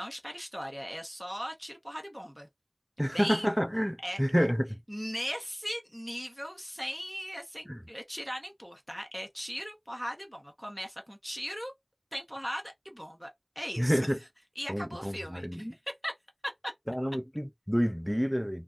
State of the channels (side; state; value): both; identical; correlation 1.00